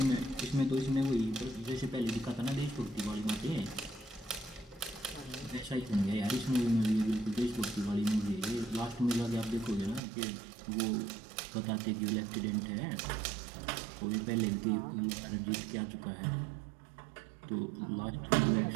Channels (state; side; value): drops out; left; at 10.0 s